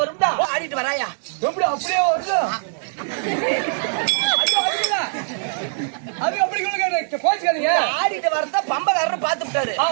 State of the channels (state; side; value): silent; left; digital silence